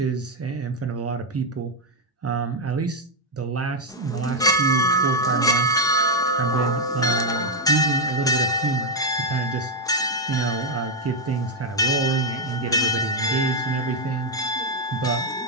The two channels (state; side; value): normal; both; correlation 0.02